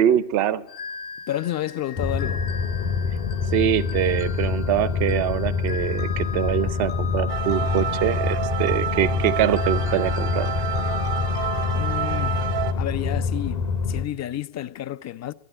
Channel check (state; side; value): late; left; 2.8 ms